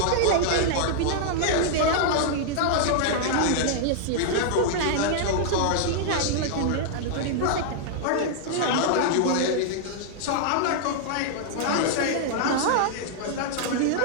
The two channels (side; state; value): both; different; correlation -0.01